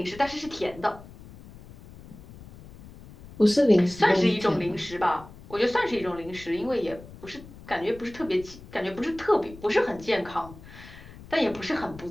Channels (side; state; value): left; noise; rumble, 18 dB below the sound